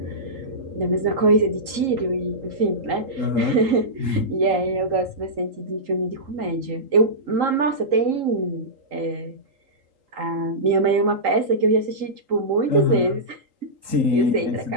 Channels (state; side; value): late; left; 3.8 ms